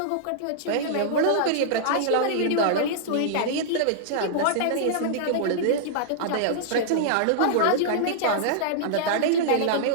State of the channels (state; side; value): different; both; correlation -0.02